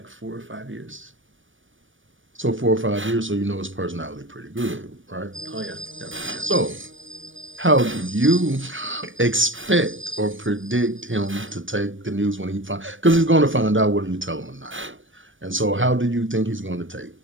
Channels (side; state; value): left; late; 0.57 ms